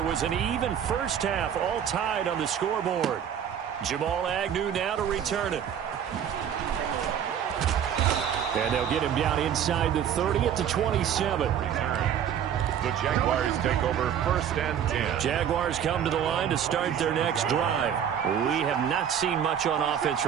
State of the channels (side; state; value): left; quieter; 9.0 dB